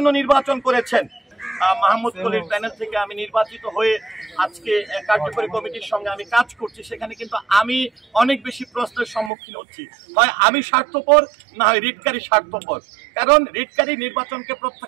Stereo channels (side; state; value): left; drops out; at 9.3 s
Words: নির্বাচন করেছেন। মাহমুদ কলির প্যানেল থেকে আমি নির্বাচিত হয়ে আজকে কার্যকরী কমিটির সঙ্গে আমি কাজ করছি। সেখানে কিন্তু আমি অনেক বেশি প্রশ্নের সম্মুখীন হচ্ছি। হয় আমি স্বার্থপর, না হয় রিটকারী স্বার্থপর। কারণ রিটকারী নির্বাচনকে